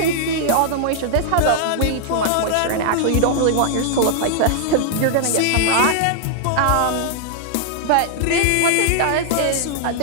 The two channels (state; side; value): different; both; correlation -0.01